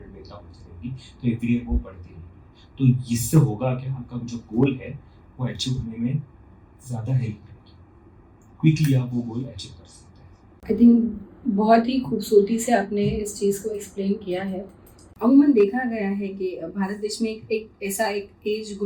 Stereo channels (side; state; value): both; identical; correlation 1.00